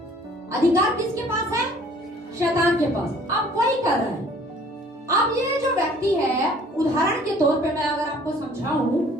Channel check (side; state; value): both; normal; correlation 0.55